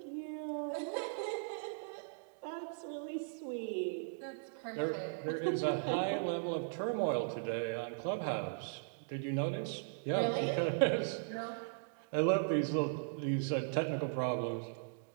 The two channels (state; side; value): silent; left; digital silence